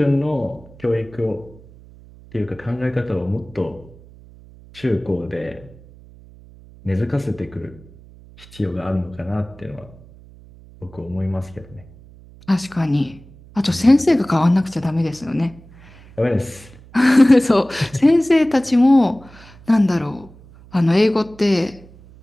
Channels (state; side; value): noise; right; hum, 23 dB below the sound